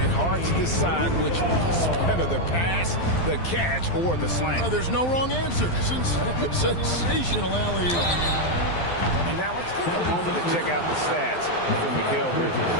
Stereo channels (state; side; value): late; right; 12 ms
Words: hard to decide which is better, the pass, the catch, or the slam. Oh, there's no wrong answer. Sensational alley-oop. And now let's take a moment to check out the stats for Mikal Bridges.